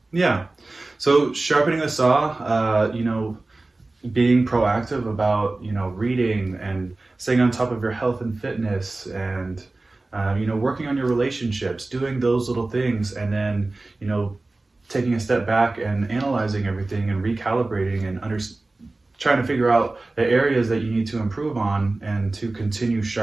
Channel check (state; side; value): quieter; left; 3.1 dB